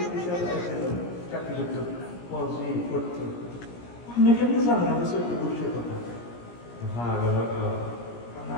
চাকরি করতো পজি করতো আপনি কেমনি জানেন আমি সত্যি বুঝছে কথা হ্যাঁ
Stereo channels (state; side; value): late; right; 17 ms